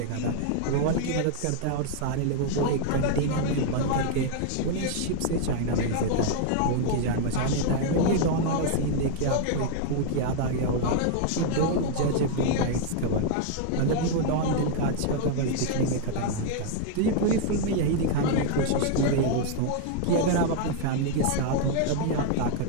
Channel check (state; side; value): different; both; correlation 0.00